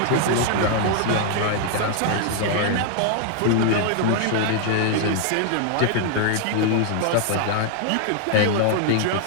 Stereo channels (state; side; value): different; both; correlation 0.00